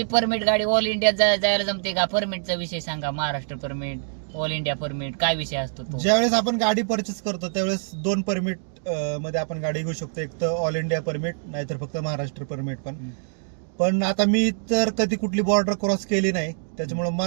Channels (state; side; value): silent; left; digital silence